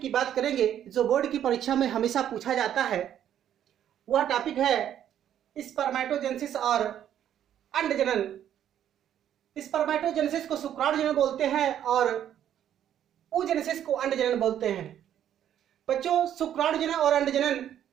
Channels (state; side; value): quieter; left; 10.4 dB